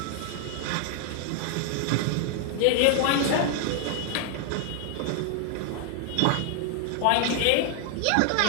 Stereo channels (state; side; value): different; both; correlation 0.00